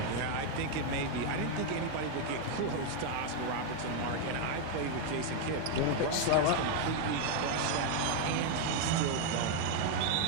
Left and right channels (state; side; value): different; both; correlation 0.01